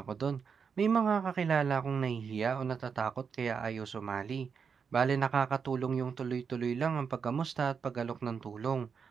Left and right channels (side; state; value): left; quieter; 6.2 dB